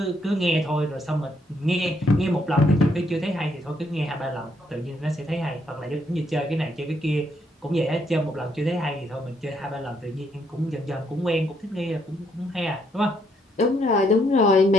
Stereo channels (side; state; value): both; normal; correlation 0.73